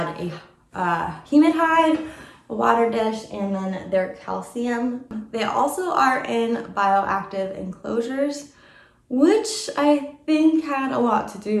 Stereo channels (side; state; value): both; identical; correlation 1.00